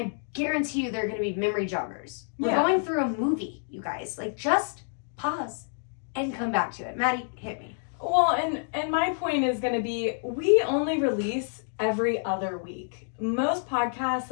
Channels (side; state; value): right; silent; digital silence